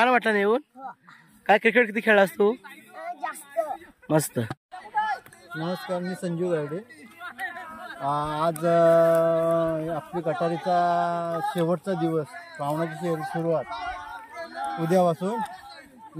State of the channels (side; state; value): both; identical; correlation 1.00